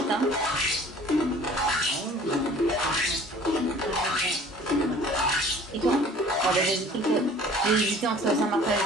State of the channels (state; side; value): normal; both; correlation 0.49